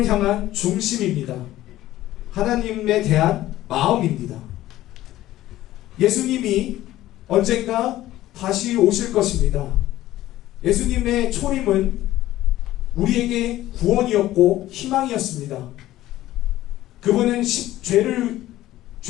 향한 중심입니다. 하나님에 대한 마음입니다. 예수님이 언젠가 다시 오실 것입니다. 예수님의 초림은 우리에게 구원이었고 희망이었습니다. 그분은 죄를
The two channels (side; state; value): right; quieter; 14.9 dB